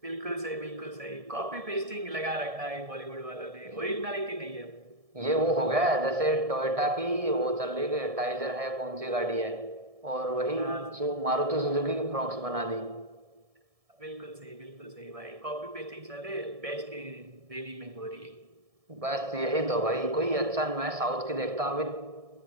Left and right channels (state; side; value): late; left; 1.7 ms